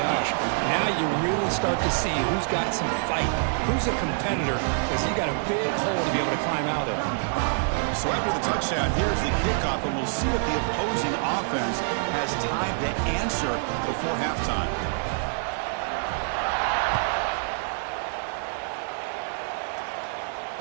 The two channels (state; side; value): silent; left; digital silence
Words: now you really start to see who's got some fight, who's a competitor, because you got a big hole to be able to climb out of. So after the touchdown, here's the kickoff, and we'll see if the opposing offense has time to answer before halftime.